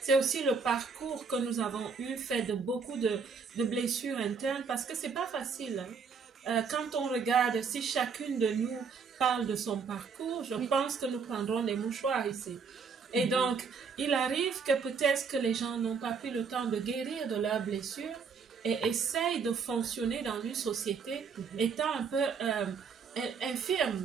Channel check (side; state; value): left; quieter; 5.5 dB